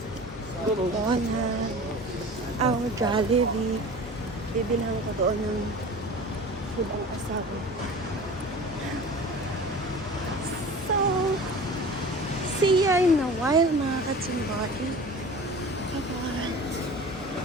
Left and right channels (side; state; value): both; normal; correlation 0.39